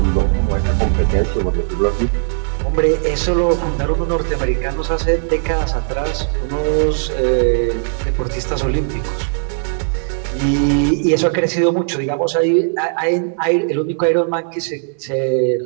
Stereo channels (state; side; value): silent; left; digital silence